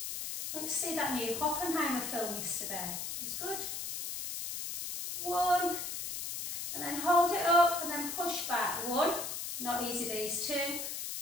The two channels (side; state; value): left; noise; hiss, 5 dB below the sound